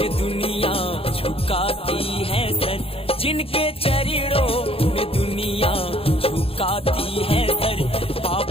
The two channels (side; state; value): right; late; 0.27 ms